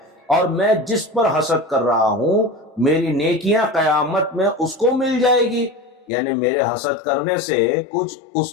اور میں جس پر حسد کر رہا ہوں میری نیکیاں قیامت میں اس کو مل جائے گی، یعنی میرے حسد کرنے سے کچھ اس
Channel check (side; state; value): right; drops out; at 6.1 s